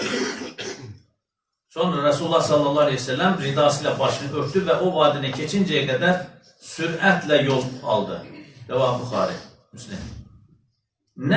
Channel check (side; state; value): both; identical; correlation 1.00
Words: Sonra Resulullah sallallahu aleyhi ve sellem ridasıyla başını örtü ve o vadine keçinceye kadar süratle yol aldı. Rəvah Buxari, Müslim.